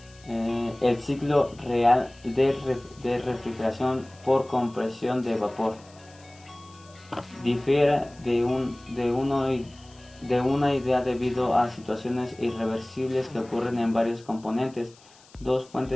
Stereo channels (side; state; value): left; noise; hiss, 26 dB below the sound